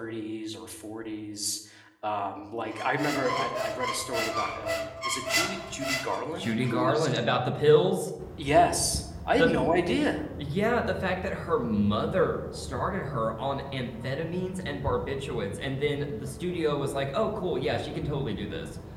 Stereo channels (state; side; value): identical; both; correlation 1.00